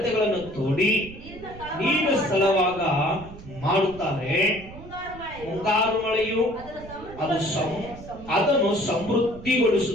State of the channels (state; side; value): noise; right; rumble, 16 dB below the sound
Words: ತೋಡಿ ನೀರು ಸ್ಥಳವಾಗ ಮಾಡುತ್ತಾರೆ. ಮುಂಗಾರು ಮಳೆಯು ಅದನ್ನು